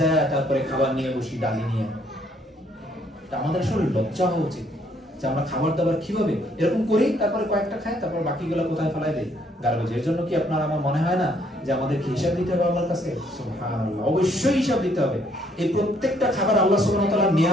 তারপরে খাবার নিয়ে বসি, ডালি নিয়ে। আমাদের আসলে লজ্জা হওয়া উচিত যে আমরা খাবার দাবার কিভাবে এরকম করি, তারপরে কয়েকটা খাই, তারপর বাকিগুলো কোথায় ফেলাই দেই, গার্বেজের জন্য। কি আপনার আমার মনে হয় না যে আমাদেরকে হিসাব দিতে হবে আল্লাহর কাছে? সুবহানাল্লাহ, অবশ্যই হিসাব দিতে হবে। এই প্রত্যেকটা খাবার আল্লাহ সুবহানাহু ওয়া তাআলার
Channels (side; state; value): both; normal; correlation 0.67